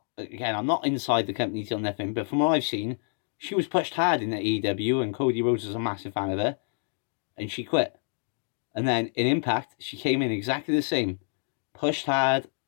inside the company till nothing, but from what I've seen, she was pushed hard in the AEW, and Cody Rhodes was a massive fan of her, and she quit. And then in Impact, she came in exactly the same. Pushed hard.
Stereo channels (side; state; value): right; silent; 60 dB below the other